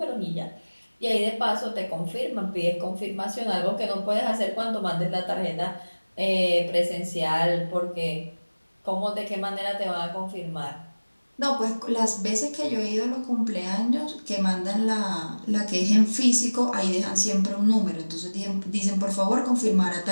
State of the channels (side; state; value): both; inverted; correlation -1.00